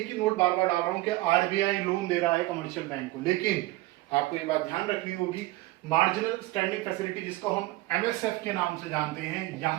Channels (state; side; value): quieter; left; 18.8 dB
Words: ही नोट बार बार डाल रहा हूं कि आरबीआई लोन दे रहा है कमर्शियल बैंक को, लेकिन आपको ये बात ध्यान रखनी होगी, मार्जिनल स्टैंडिंग फैसिलिटी जिसको हम एमएसएफ के नाम से जानते हैं,